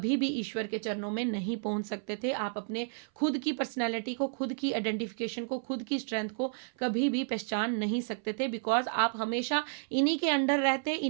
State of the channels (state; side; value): silent; left; 57 dB below the other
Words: भी ईश्वर के चरणों में नहीं पहुंच सकते थे। आप अपने खुद की पर्सनैलिटी को, खुद की आइडेंटिफिकेशन को, खुद की स्ट्रेंथ को कभी भी पहचान नहीं सकते थे, बिकॉज आप हमेशा इन्हीं के अंडर रहते,